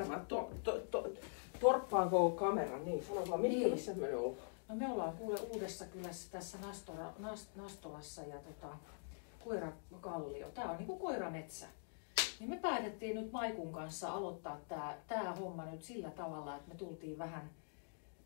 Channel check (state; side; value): silent; right; digital silence